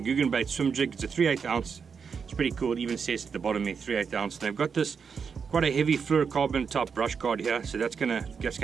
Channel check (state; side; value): quieter; left; 6.1 dB